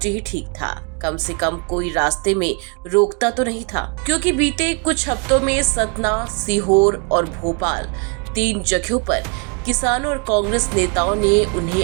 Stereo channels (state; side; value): quieter; left; 34.7 dB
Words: ही ठीक था, कम से कम कोई रास्ते में रोकता तो नहीं था। क्योंकि बीते कुछ हफ्तों में सतना, सीहोर और भोपाल 3 जगहों पर किसानों और कांग्रेस नेताओं ने उन्हें